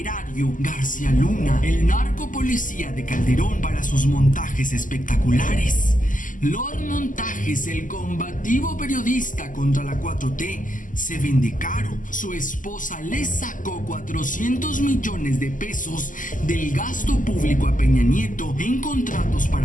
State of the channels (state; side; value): late; right; 0.38 ms